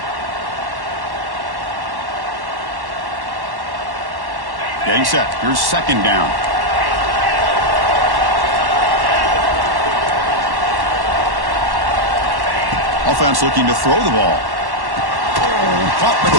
Getting set. Here's 2nd down. Offense looking to throw the ball. Caught with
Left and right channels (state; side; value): late; left; 1.1 ms